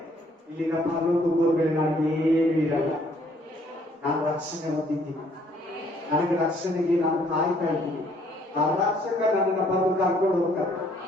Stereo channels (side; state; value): both; normal; correlation 0.64